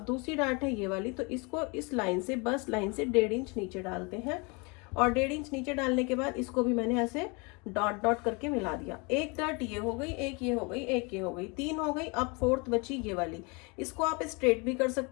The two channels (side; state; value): right; quieter; 30.1 dB